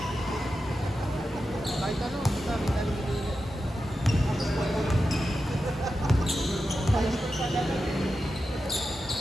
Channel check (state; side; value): normal; both; correlation 0.90